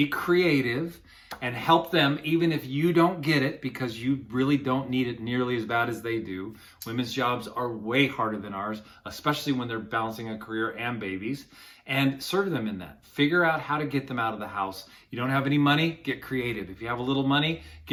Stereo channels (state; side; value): identical; both; correlation 1.00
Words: creative, and help them even if you don't get it, because you really don't need it nearly as bad as they do. Women's jobs are way harder than ours, especially when they're balancing a career and babies. And serve them in that. Figure out how to get them out of the house. You don't have any money? Get creative. If you have a little money,